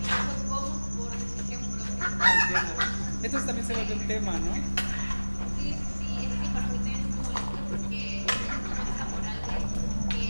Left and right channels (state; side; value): inverted; both; correlation -1.00